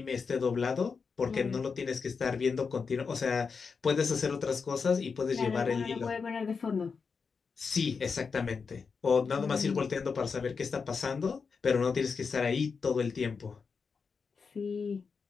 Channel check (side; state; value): right; quieter; 5.3 dB